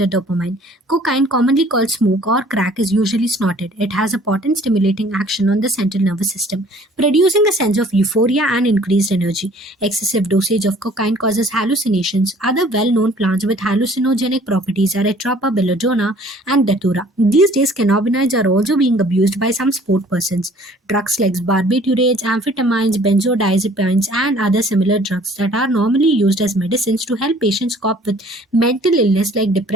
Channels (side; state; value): both; normal; correlation 0.54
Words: dopamine. Cocaine, commonly called smoke or crack, is usually snorted. It has a potent stimulating action on the central nervous system, producing a sense of euphoria and increased energy. Excessive dosage of cocaine causes hallucinations. Other well-known plants with hallucinogenic properties are atropa, belladonna, and datura. These days, cannabinoids are also being abused by some sport persons. Drugs like barbiturates, amphetamines, benzodiazepines, and other similar drugs that are normally used as medicines to help patients cope with mental illness like